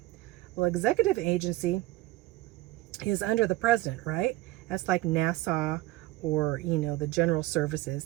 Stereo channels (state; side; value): quieter; left; 17.7 dB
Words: Well, executive agency is under the president, right? That's like NASA, or, you know, the general services.